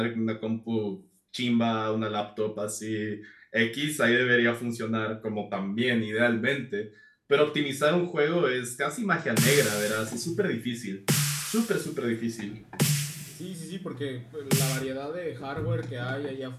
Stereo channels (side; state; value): both; identical; correlation 1.00